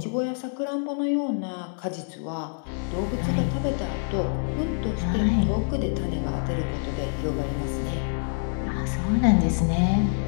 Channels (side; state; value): right; silent; digital silence